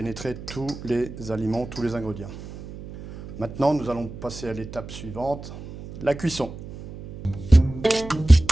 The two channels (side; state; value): right; noise; hum, 13 dB below the sound